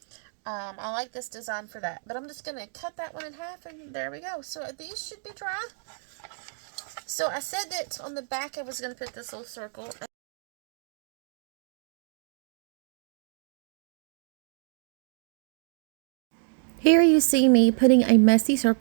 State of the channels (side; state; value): left; silent; 59 dB below the other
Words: I like this design for that. But I'm just going to cut that one in half, and there we go. So these should be dry. So I said that on the back I was going to put this little circle. Here you see me putting a messy